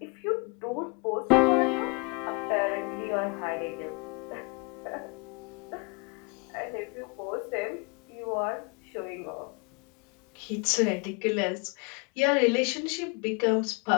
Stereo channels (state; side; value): quieter; right; 29.0 dB